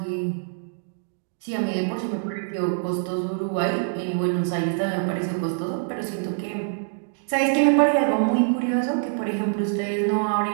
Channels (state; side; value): silent; left; digital silence